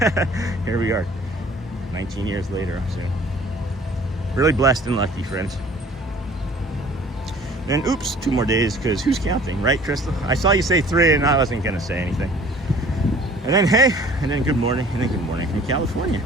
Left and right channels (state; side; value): normal; both; correlation 0.51